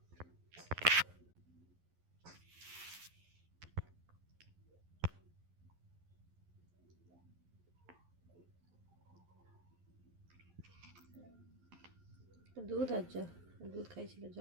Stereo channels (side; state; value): left; late; 11 ms